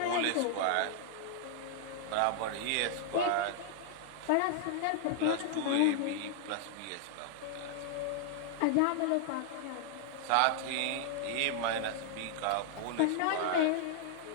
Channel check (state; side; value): different; both; correlation -0.01